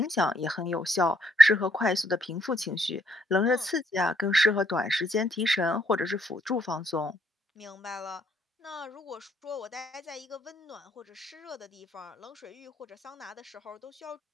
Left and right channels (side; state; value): both; normal; correlation 0.69